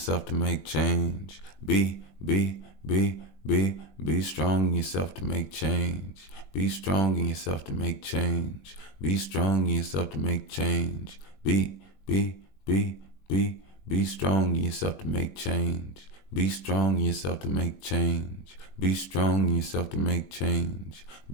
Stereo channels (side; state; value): right; late; 21 ms